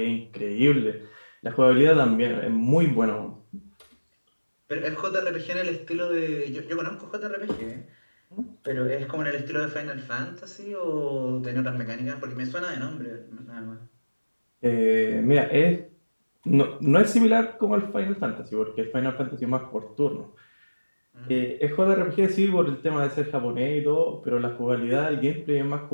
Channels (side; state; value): both; inverted; correlation -1.00